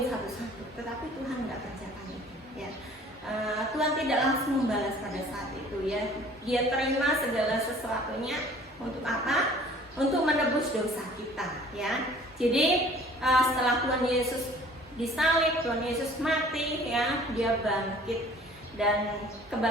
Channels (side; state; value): both; normal; correlation 0.51